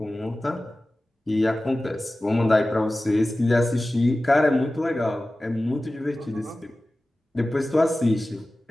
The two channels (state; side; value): normal; both; correlation 0.96